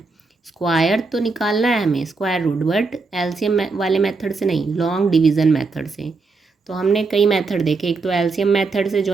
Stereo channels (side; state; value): left; quieter; 4.0 dB